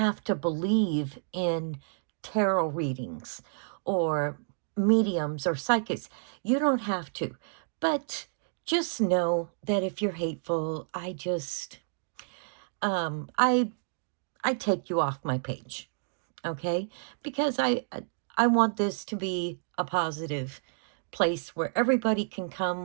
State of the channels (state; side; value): silent; left; digital silence